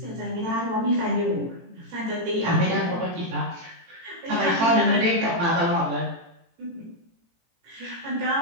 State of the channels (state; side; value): late; left; 18 ms